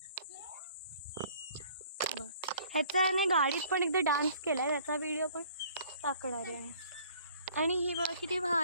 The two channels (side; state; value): both; inverted; correlation -0.56